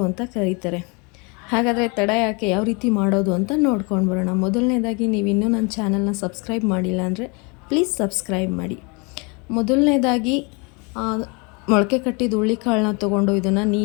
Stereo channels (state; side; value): quieter; right; 30.9 dB